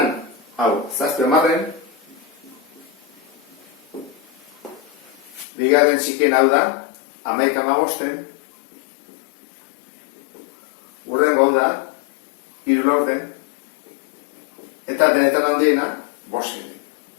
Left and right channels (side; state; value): right; drops out; at 5.5 s